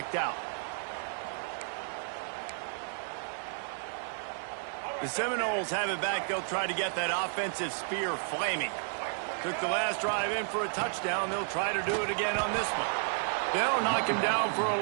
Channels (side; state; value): left; silent; 56 dB below the other